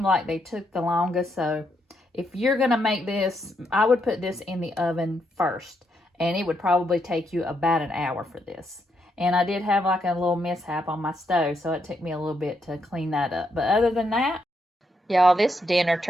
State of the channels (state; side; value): normal; both; correlation 0.78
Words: like they took the longest. So if you're going to make this, I would put this in the oven first. And it would probably take you about an hour for this. And I did have like a little mishap on my stove, so it took me a little bit to clean that up. But other than that, Y'all, this dinner